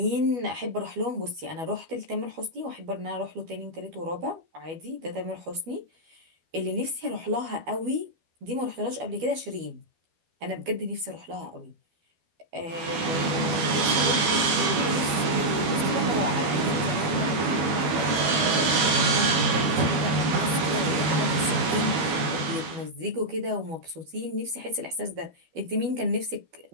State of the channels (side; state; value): left; late; 12 ms